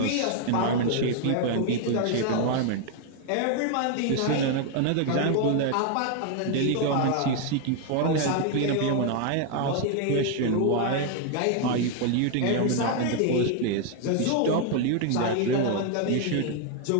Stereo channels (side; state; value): both; different; correlation 0.00